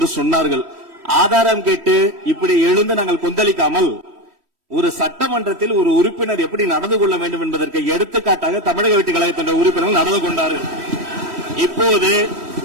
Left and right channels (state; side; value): late; left; 3.1 ms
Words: சொன்னார்கள். ஆதாரம் கேட்டு இப்படி எழுந்து நாங்கள் கொந்தளிக்காமல் ஒரு சட்டமன்றத்தில் ஒரு உறுப்பினர் எப்படி நடந்து கொள்ள வேண்டும் என்பதற்கு எடுத்துக்காட்டாக தமிழக வெற்றி கழகத்தின் உறுப்பினர்கள் நடந்து கொண்டார்கள். இப்போது